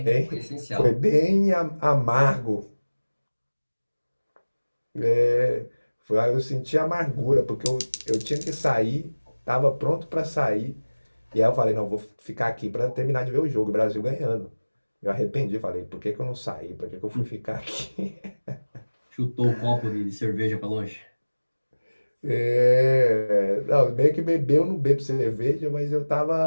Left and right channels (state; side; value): inverted; both; correlation -1.00